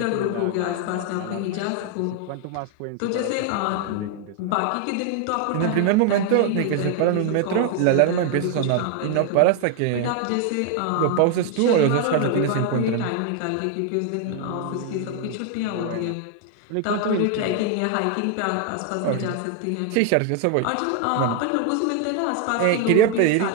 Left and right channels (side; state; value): both; different; correlation 0.00